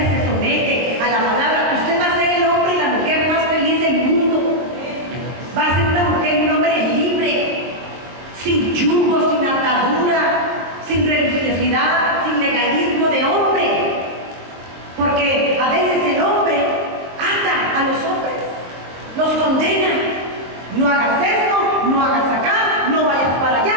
somete a la palabra, usted va a ser el hombre y la mujer más feliz del mundo. Va a ser una mujer y un hombre libre, sin yugo, sin atadura, sin condena. No hagas esto, no hagas acá, no vayas para allá,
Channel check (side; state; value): left; late; 23 ms